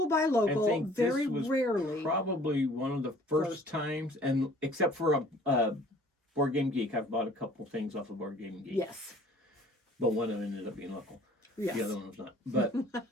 buy local, I think very this was rarely. Probably one of the first times, and except for a Board Game Geek, I've bought a couple things off of Board Game Geek. Yes. But one of them ended up being local. Yes. The other one was not. But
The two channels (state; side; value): normal; both; correlation 0.53